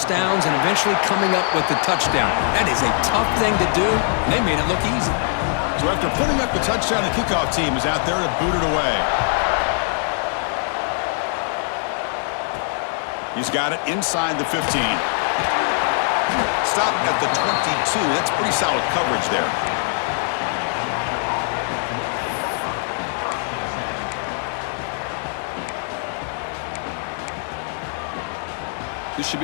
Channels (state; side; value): silent; right; 62 dB below the other